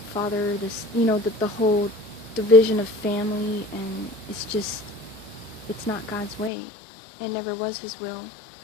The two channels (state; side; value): drops out; right; at 6.5 s